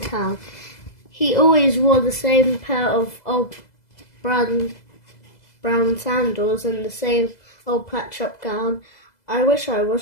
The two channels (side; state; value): right; late; 2.0 ms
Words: He always wore the same pair of old brown sandals and the same old patch-up gown. "I wish I